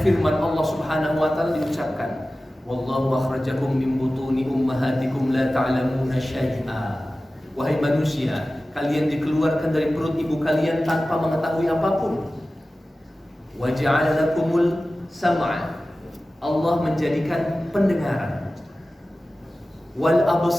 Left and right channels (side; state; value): both; normal; correlation 0.96